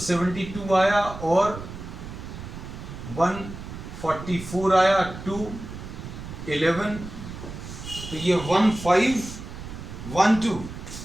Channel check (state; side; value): noise; right; rumble, 11 dB below the sound